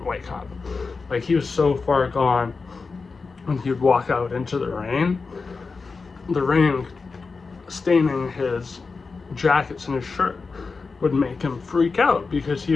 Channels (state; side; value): quieter; right; 4.5 dB